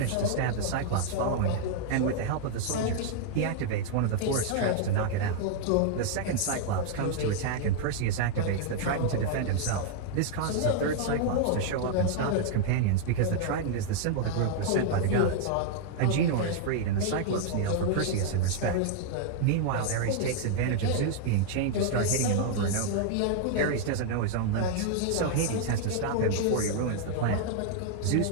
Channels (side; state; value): both; different; correlation -0.01